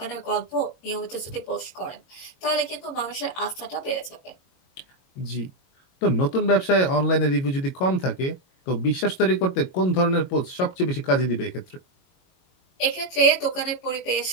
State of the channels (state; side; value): late; right; 22 ms